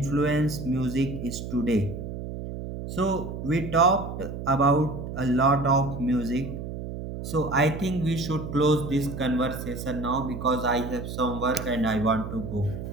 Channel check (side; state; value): right; noise; hum, 7 dB below the sound